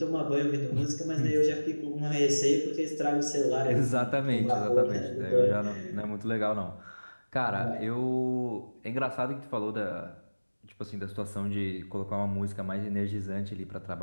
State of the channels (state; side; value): inverted; both; correlation -1.00